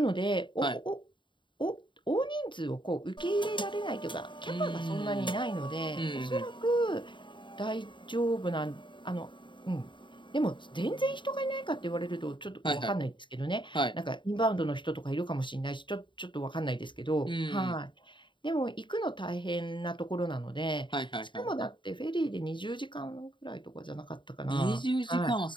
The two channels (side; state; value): right; late; 0.23 ms